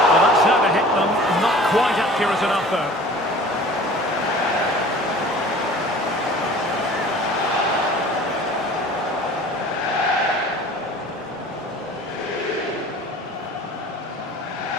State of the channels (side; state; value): both; normal; correlation 0.45